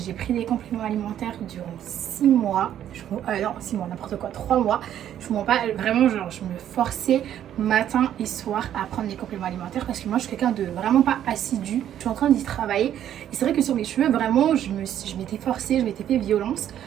pris des compléments alimentaires durant 6 mois. Non 6 mois n'importe quoi, 3 mois. Je vous mens pas, vraiment genre je me forçais matin et soir à prendre des compléments alimentaires parce que moi je suis quelqu'un de vraiment pas assidu. Je suis en train d'y travailler et c'est vrai que sur mes cheveux vraiment je m'étais forcée, je m'étais fait violence.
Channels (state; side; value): quieter; left; 10.8 dB